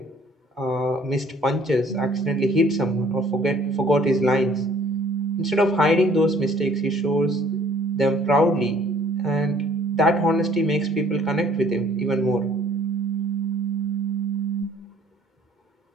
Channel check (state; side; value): normal; both; correlation 0.57